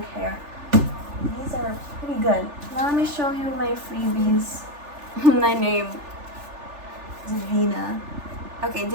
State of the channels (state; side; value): late; left; 3.4 ms